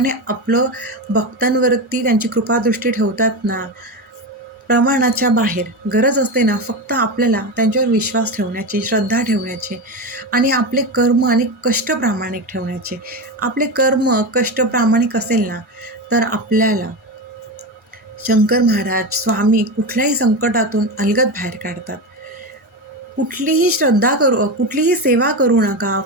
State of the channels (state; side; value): normal; both; correlation 0.18